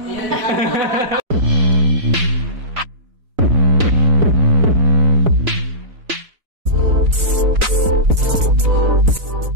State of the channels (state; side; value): late; left; 3.9 ms